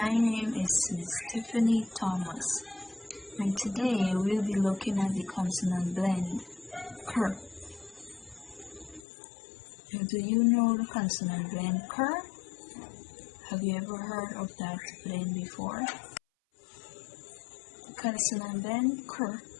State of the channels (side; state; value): right; drops out; at 9.0 s